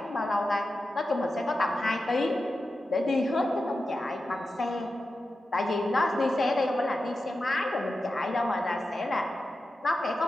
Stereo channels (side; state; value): both; normal; correlation 0.91